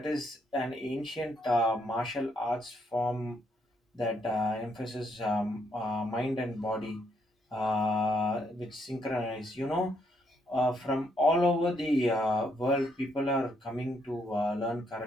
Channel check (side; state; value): both; normal; correlation 0.73